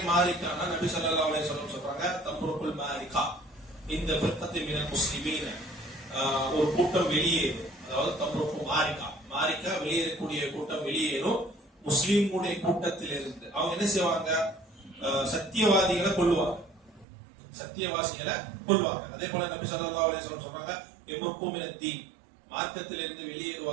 மாரிகானா நபி ஸல்லல்லாஹு அலைஹி வஸல்லம் சொல்றாங்க தம்ருக்குல் மாரிகா இந்த ஃபிர்கத்தி மினல் முஸ்லிமீன, ஒரு கூட்டம் வெளியேறும். அதாவது தம்ருக்கு மாரிகா வெளியேறக்கூடிய கூட்டம் வெளியேறும் முஸ்லிம்களுடைய கூட்டத்தில் இருந்து. அவங்க என்ன செய்வாங்க? சத்தியவாதிகளை கொல்லுவாங்க, சத்தியவாசிகளை கொல்வாங்க. அதே போல நபி ஸல்லல்லாஹு அலைஹி வஸல்லம் சொல்றாங்க யம்ருக்கு மினத் தீன், மார்க்கத்தில் இருந்து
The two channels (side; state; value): left; drops out; at 17.1 s